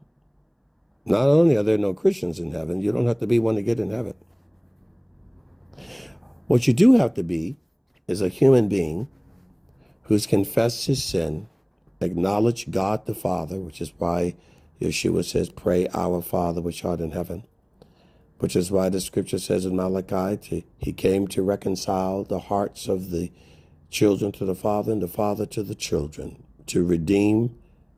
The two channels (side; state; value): both; identical; correlation 1.00